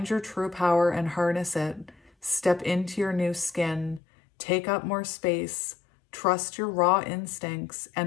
your true power and harness it. Step into your new skin. Take up more space. Trust your raw instincts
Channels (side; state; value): right; drops out; at 4.0 s